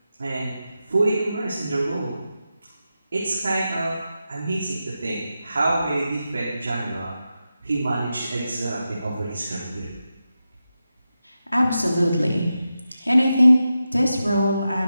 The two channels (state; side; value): inverted; both; correlation -0.90